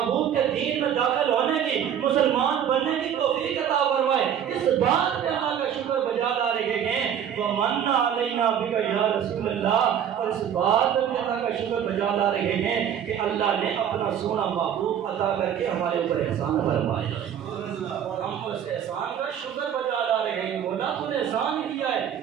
کے دین میں داخل ہونے کی، مسلمان بننے کی توفیق عطا فرمائے، اس بات پہ اللہ کا شکر بجا لا رہے ہیں۔ ومن علینا بک یا رسول اللہ، اور اس بات پہ بھی اللہ کا شکر بجا لا رہے ہیں کہ اللہ نے اپنا سونا محبوب عطا کر کے ہمارے اوپر احسان فرمایا، ہم اس احسان کا شکر بجا لا رہے ہیں۔ مولا تو نے احسان کیا ہے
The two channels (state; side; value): quieter; left; 9.1 dB